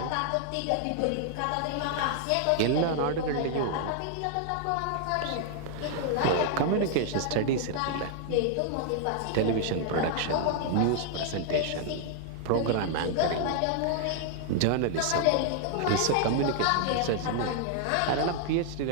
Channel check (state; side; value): different; both; correlation -0.01